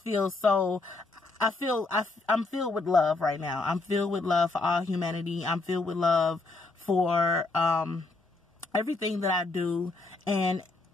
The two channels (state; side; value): quieter; right; 3.4 dB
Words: feel so, I'm filled with love right now. I'm filled with love for all humanity. I'm filled with love for, everything that I do, and